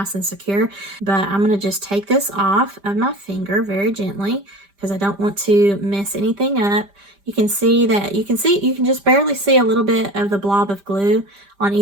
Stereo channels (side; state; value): left; late; 5.0 ms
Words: and secure. But I'm going to just take this off of my finger very gently because I don't want to mess anything up. You can see that, you can just barely see a little bit of the blob of glue on